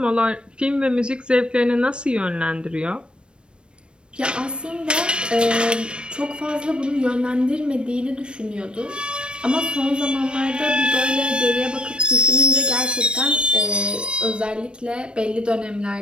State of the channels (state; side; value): late; left; 0.056 ms